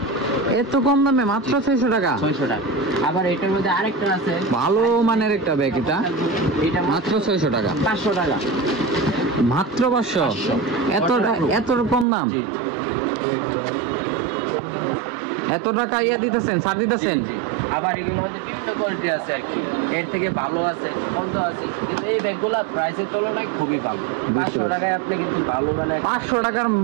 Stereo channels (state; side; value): drops out; left; at 12.1 s